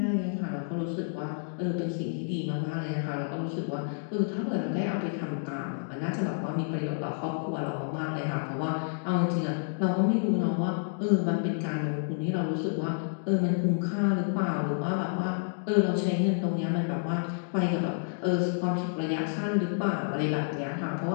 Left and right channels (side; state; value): right; silent; digital silence